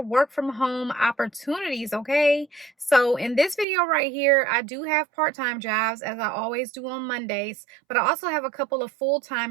work from home opportunities, okay? So in this video right here, I do have part-time jobs as I always do on Mondays, but I also have a couple of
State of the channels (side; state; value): left; drops out; at 3.7 s